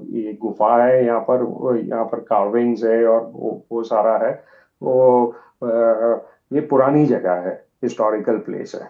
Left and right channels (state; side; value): identical; both; correlation 1.00